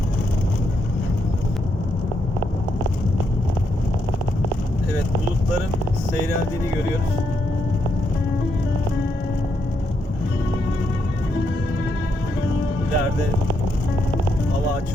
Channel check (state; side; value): normal; both; correlation 0.79